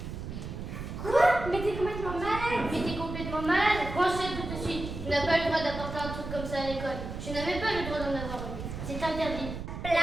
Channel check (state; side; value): noise; right; rumble, 7 dB below the sound